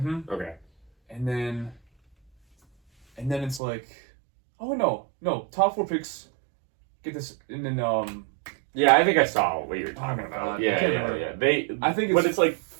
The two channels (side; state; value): left; drops out; at 3.6 s